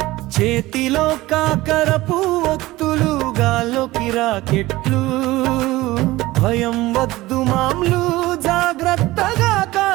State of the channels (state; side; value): quieter; left; 18.5 dB